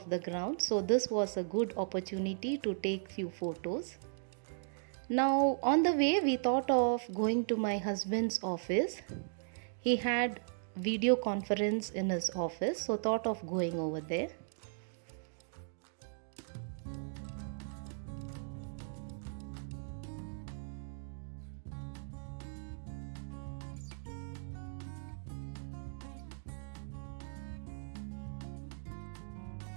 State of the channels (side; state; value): left; silent; digital silence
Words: the ground. So this was a good opportunity to take few photos. Now on the way we thought of going to my husband's office. He had video conference in his office, so thought of going over there.